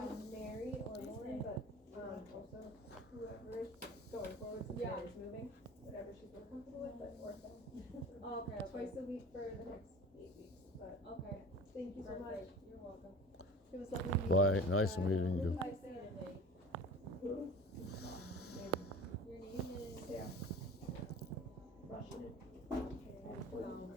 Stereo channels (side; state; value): both; normal; correlation 0.39